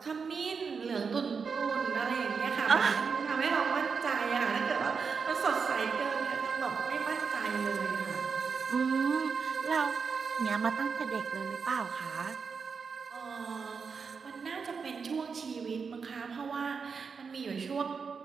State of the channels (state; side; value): quieter; left; 5.5 dB